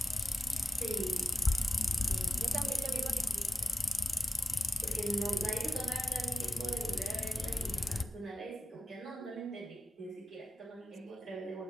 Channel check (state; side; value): normal; both; correlation 0.90